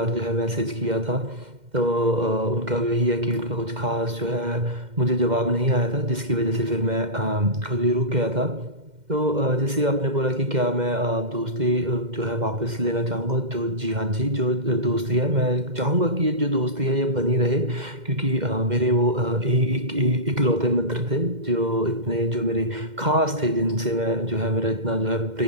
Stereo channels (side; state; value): left; late; 2.1 ms